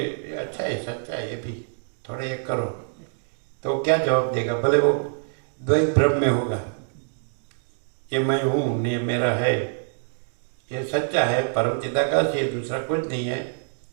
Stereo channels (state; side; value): silent; left; digital silence